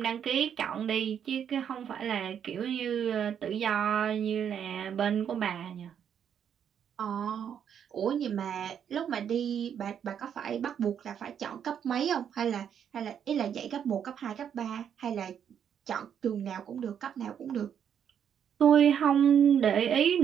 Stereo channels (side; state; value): left; quieter; 8.5 dB